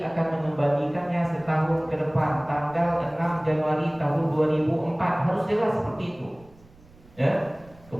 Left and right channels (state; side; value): noise; right; rumble, 26 dB below the sound